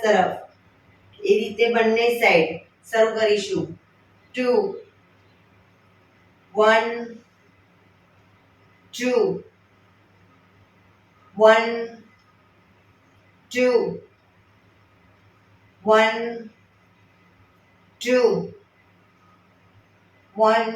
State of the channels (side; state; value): both; identical; correlation 1.00